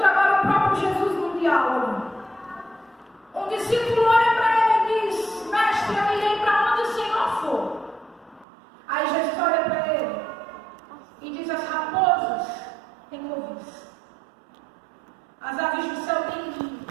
agora o próprio Jesus num diálogo. Um discípulo olha para ele e diz: Mestre, eu irei para onde o Senhor for. Aí Jesus olha para ele e diz: as raposas têm covis, as aves do céu têm ninho,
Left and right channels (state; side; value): drops out; left; at 8.5 s